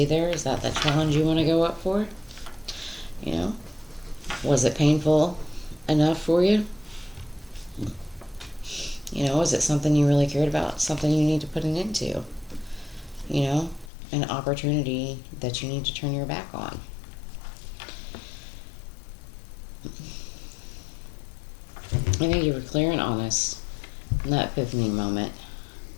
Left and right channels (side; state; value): right; drops out; at 13.9 s